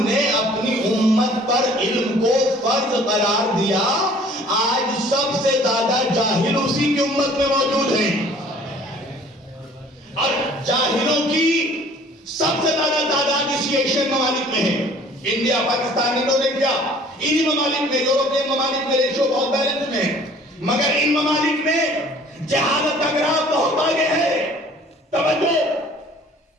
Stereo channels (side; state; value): both; normal; correlation 0.52